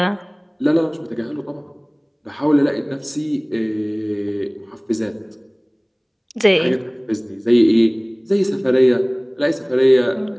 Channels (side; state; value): both; identical; correlation 1.00